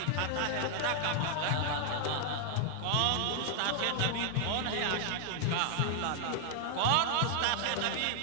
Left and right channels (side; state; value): both; different; correlation 0.00